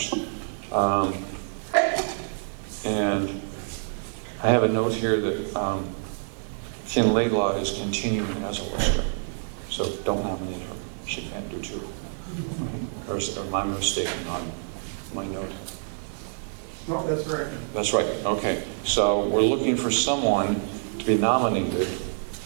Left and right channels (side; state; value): left; silent; 60 dB below the other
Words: I have a note here that Kim Laidlaw is continuing as a lister, so don't nominate her. She can't do two. Or am I mistaken on my note? No, that's correct. That's right, okay. So we're looking for someone to be nominated